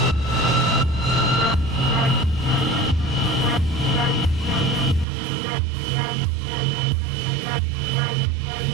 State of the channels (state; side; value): drops out; left; at 5.1 s